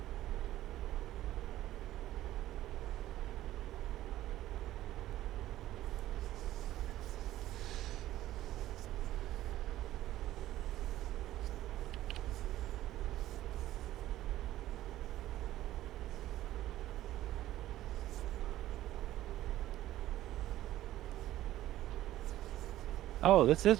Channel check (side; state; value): left; quieter; 14.3 dB